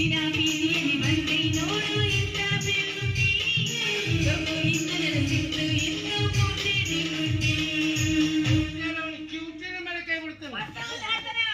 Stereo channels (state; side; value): identical; both; correlation 1.00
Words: ಬೀದಿಯಲ್ಲಿ ಬಂದೆ ನೋಡು, ಎಂತ ಬೆಳ್ಳುಂಡಿ ತಗೋ ಇನ್ನು ನನ್ನ ಸಿಟ್ಟು ಎಂತ ಮೋಟೆ ಬಿಡುಂಡಿ. ಅವನು ಕಿವುಚಿನ ಮೇಲೆ ಕೈ ಬಿಡ್ತಾನೆ.